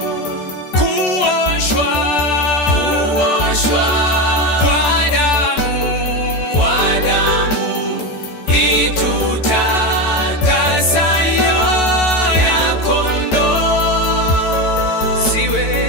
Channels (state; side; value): late; right; 14 ms